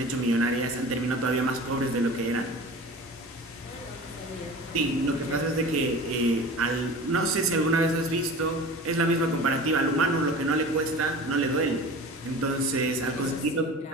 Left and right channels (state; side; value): normal; both; correlation 0.37